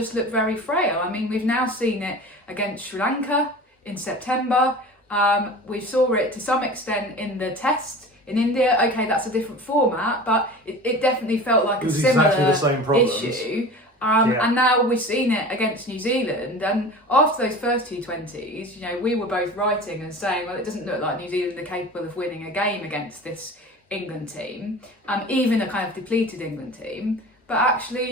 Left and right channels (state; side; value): normal; both; correlation 0.36